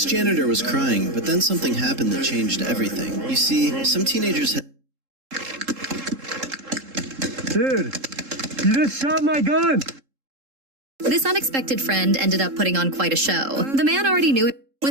janitor was crying, but then something happened that changed everything. You see, some teenagers had... Dude, you just shot my gun! This unexpected friend ended up putting on quite a show. The man already knew it.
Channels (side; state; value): left; late; 3.7 ms